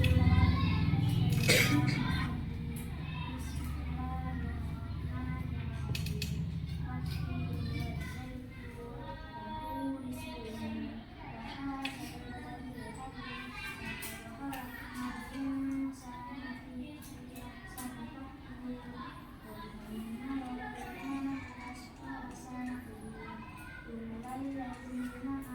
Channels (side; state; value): both; identical; correlation 1.00